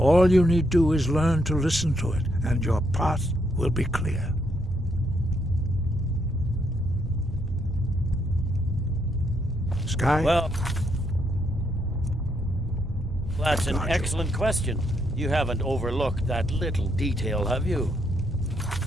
you need do is learn to listen to it, and your path will be clear. Sky? Well, that's an excellent question. You haven't overlooked that little detail, have you?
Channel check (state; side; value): normal; both; correlation 0.76